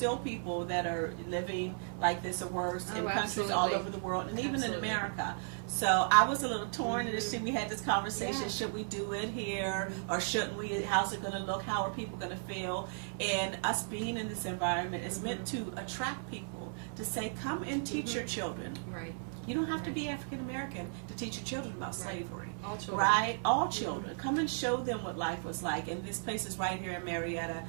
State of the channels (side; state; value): left; silent; 54 dB below the other